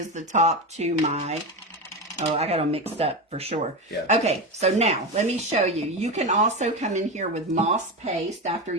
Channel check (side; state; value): both; normal; correlation 0.18